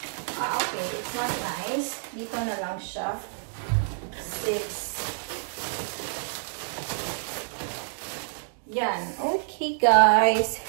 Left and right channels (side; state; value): left; silent; digital silence